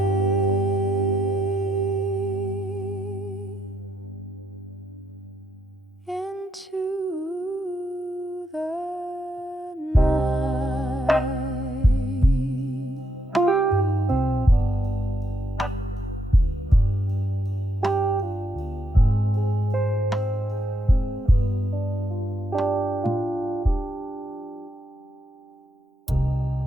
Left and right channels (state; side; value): normal; both; correlation 0.78